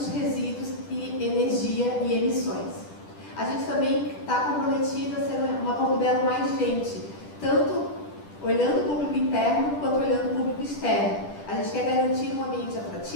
resíduos e energia e emissões. A gente também está comprometido a ser uma Porto Belo mais gente, tanto olhando o público interno quanto olhando o público externo. A gente quer garantir um ambiente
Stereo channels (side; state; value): right; late; 10 ms